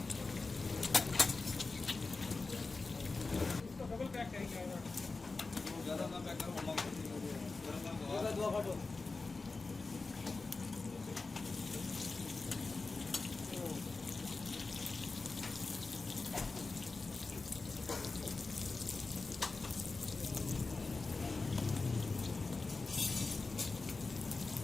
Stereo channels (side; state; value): right; quieter; 3.8 dB